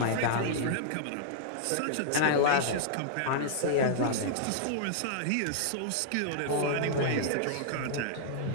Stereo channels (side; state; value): both; different; correlation -0.02